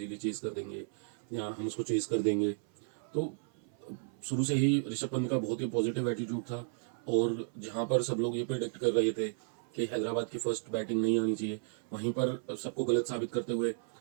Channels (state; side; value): silent; left; 55 dB below the other